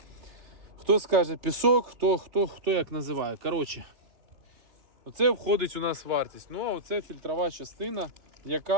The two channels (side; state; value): left; late; 3.3 ms